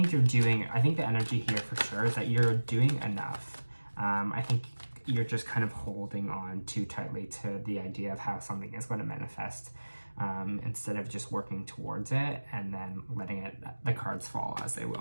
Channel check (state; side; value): inverted; both; correlation -1.00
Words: the energy here for sure is that you're doing enough. I think you're just kind of holding on too tightly to the idea of how something is going to manifest, instead of just working towards it and then letting the cards fall as they